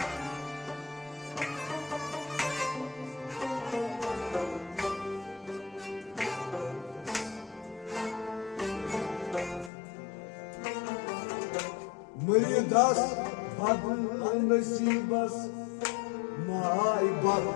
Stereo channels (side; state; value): right; drops out; at 9.7 s